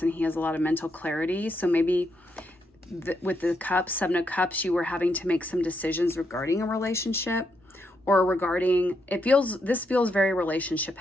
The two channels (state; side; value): normal; both; correlation 0.80